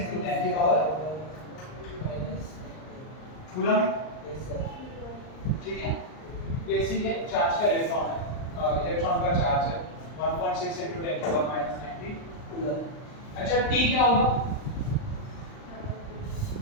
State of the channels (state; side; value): late; right; 39 ms